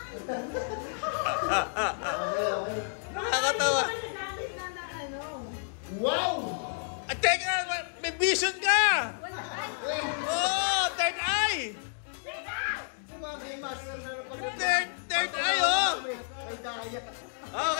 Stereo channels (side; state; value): right; silent; digital silence